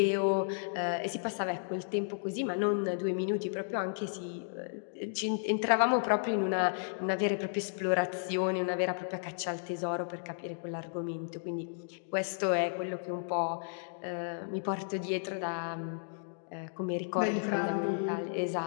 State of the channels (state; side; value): silent; right; digital silence